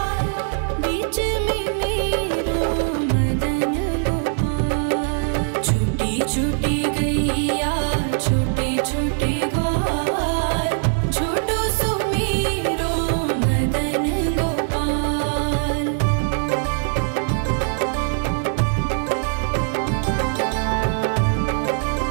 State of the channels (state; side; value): silent; left; 59 dB below the other